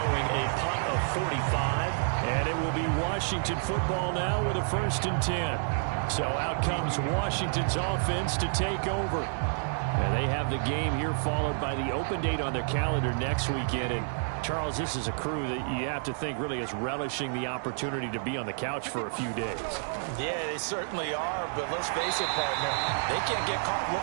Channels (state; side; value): silent; left; digital silence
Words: a punt of 45. And it will be Washington football now with a 1st and 10. So out comes Washington's offense to take over. And they have the game here followed by the open date on their calendar next weekend. And Charles, this is a crew that you have to think really is relishing the opportunity to be on the couch for a few days. Yeah, they certainly are, but let's face it, partner, they can't get caught